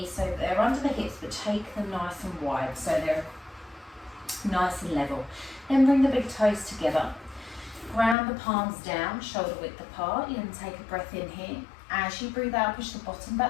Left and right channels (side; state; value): right; drops out; at 8.2 s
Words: so they're under the hips, but take them nice and wide so they're nice and level. Then bring the big toes together. Ground the palms down, shoulder width apart. You can take a breath in here. As you breathe out, push the bottom